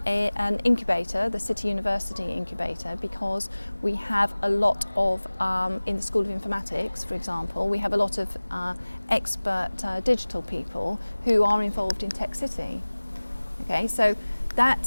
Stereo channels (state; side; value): inverted; both; correlation -1.00